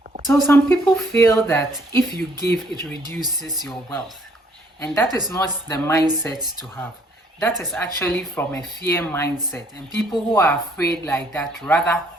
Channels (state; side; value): normal; both; correlation 0.64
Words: So some people feel that if you give, it reduces your wealth. And that is not the mindset to have. That is actually from a fear mindset. And people who are afraid like that rather